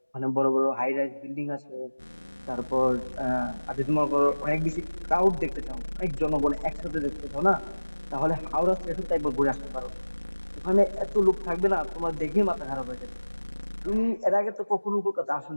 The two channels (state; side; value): inverted; both; correlation -1.00